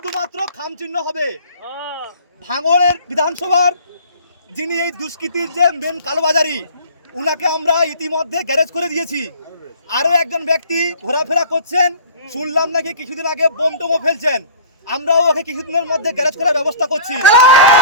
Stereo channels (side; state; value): both; inverted; correlation -0.45